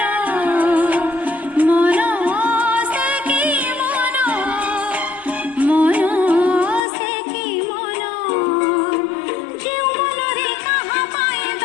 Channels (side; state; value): right; drops out; at 6.8 s